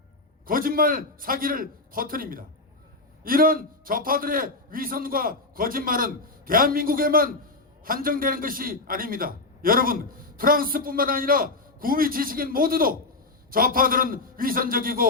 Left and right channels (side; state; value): right; quieter; 3.3 dB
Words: 거짓말 사기를 퍼뜨립니다. 이런 좌파들의 위선과 거짓말은 대한민국에만 한정되는 것이 아닙니다. 여러분, 프랑스뿐만 아니라 구미 지식인 모두도 좌파들은